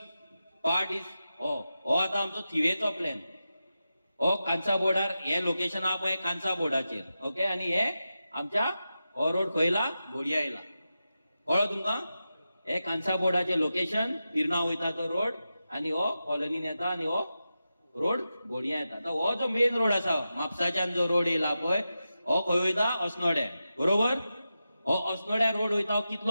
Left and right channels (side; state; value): both; inverted; correlation -0.91